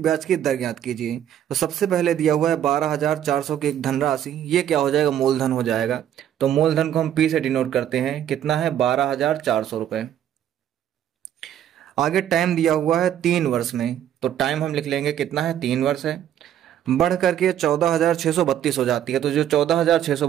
ब्याज की दर ज्ञात कीजिए। तो सबसे पहले दिया हुआ है 12,400 की एक धनराशि, ये क्या हो जाएगा? मूलधन हो जाएगा। तो मूलधन को हम पी से डिनोट करते हैं, कितना है? 12,400 रुपये। आगे टाइम दिया हुआ है 3 वर्ष में, तो टाइम हम लिख लेंगे, कितना है? 3 वर्ष है। बढ़ करके 14,632 हो जाती है। तो जो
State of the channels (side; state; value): left; quieter; 10.5 dB